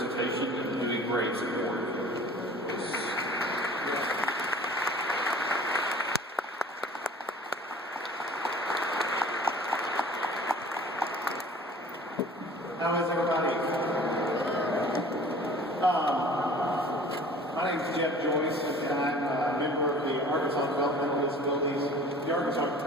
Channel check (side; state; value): both; normal; correlation 0.46